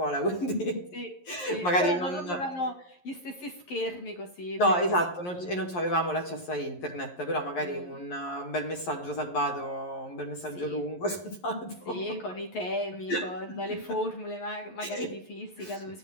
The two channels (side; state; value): right; late; 11 ms